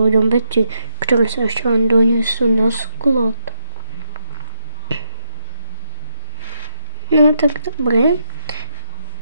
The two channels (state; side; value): inverted; both; correlation -0.82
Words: veci, ktoré sa ešte len donesú na sklad. No tak dobre.